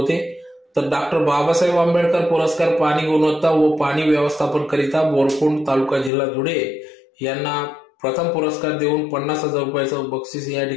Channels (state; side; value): drops out; right; at 6.1 s